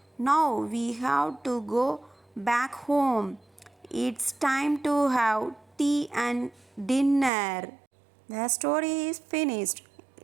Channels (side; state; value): left; drops out; at 7.3 s